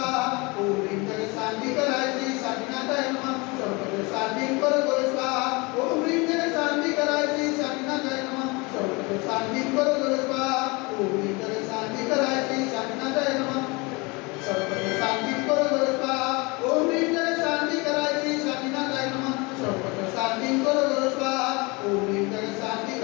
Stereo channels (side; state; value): right; quieter; 26.7 dB